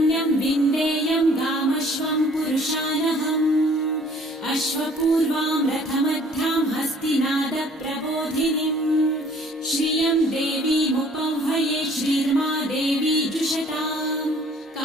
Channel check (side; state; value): both; normal; correlation 0.55